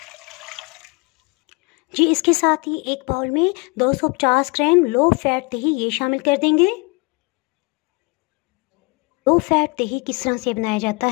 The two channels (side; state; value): right; quieter; 28.9 dB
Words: जी, इसके साथ ही एक बाउल में 250 ग्राम लो फैट दही ये शामिल कर देंगे। लो फैट दही किस तरह से बनाया जाता